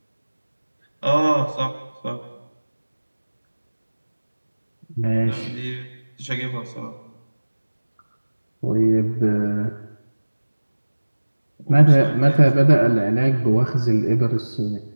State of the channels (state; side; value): inverted; both; correlation -1.00